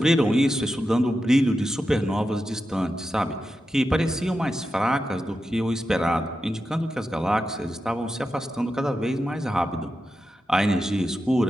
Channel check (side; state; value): both; normal; correlation 0.89